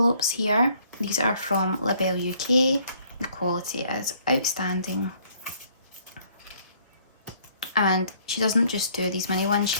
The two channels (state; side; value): inverted; both; correlation -0.63